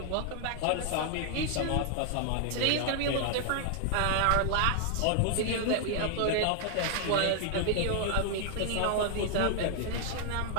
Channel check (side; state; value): both; different; correlation 0.00